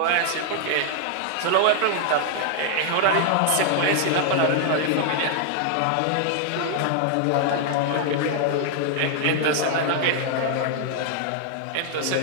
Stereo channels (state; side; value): different; both; correlation 0.00